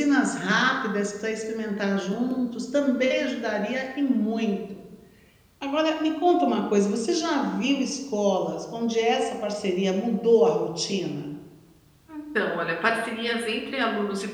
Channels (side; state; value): both; identical; correlation 1.00